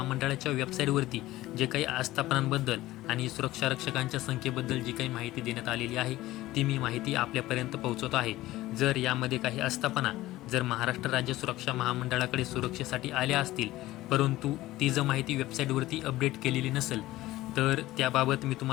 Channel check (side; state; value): right; quieter; 16.8 dB